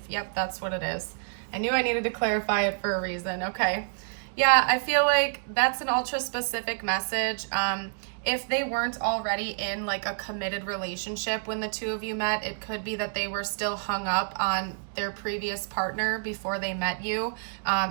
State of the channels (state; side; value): silent; left; digital silence